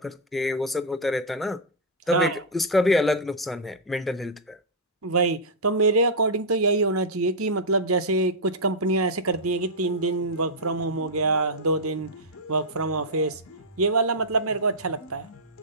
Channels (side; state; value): both; normal; correlation -0.07